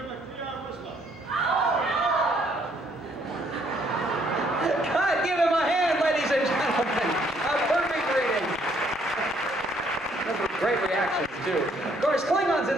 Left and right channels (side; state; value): both; normal; correlation 0.67